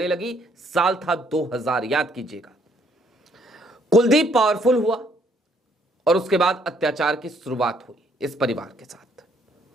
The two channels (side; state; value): both; normal; correlation 0.67